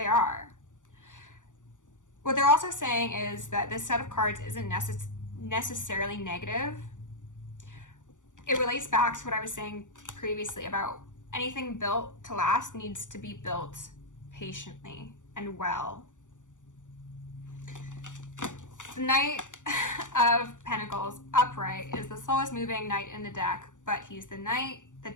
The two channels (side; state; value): right; late; 0.86 ms